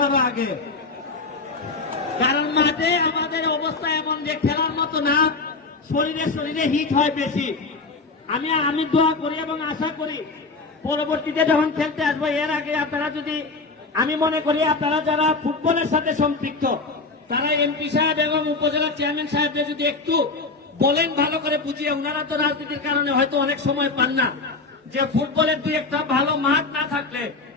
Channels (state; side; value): quieter; right; 3.8 dB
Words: আরো আগে। কারণ মাঠে আমাদের অবস্থা এমন যে খেলার মতো না, শরীরে হিট হয় বেশি। আমি দোয়া করি এবং আশা করি পরবর্তীতে যখন খেলতে আসবো এর আগে আপনারা যদি, আমি মনে করি আপনারা যারা ফুটবলের সাথে সম্পৃক্ত তারা এমপি সাহেব এবং উপজেলা চেয়ারম্যান সাহেবদের যদি একটু বলেন ভালো করে বুঝিয়ে, ওনারা তো রাজনীতির কারণে হয়তো অনেক সময় পান না, যে ফুটবলের দুই একটা ভালো মাঠ না থাকলে